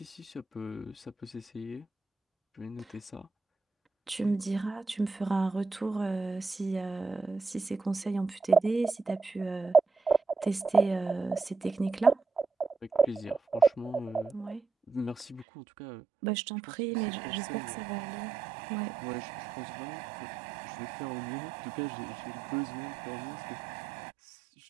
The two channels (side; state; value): left; drops out; at 15.5 s